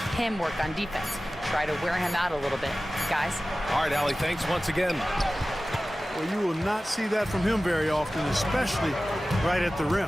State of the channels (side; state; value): both; normal; correlation 0.96